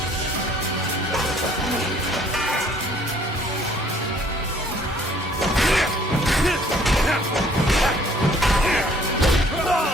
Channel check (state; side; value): normal; both; correlation 0.58